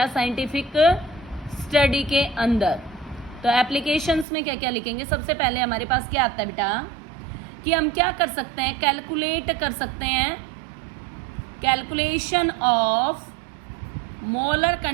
साइंटिफिक स्टडी के अंदर। तो एप्लीकेशंस में क्या क्या लिखेंगे, सबसे पहले हमारे पास क्या आता है बेटा, कि हम क्या कर सकते हैं, कैलकुलेट कर सकते हैं, calculation of molar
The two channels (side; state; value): left; drops out; at 4.2 s